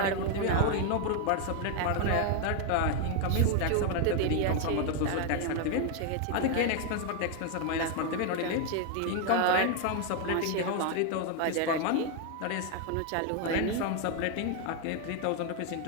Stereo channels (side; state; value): both; different; correlation 0.01